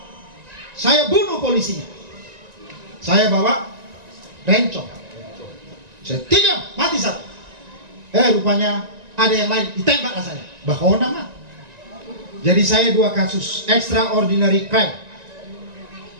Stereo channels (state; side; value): late; left; 1.9 ms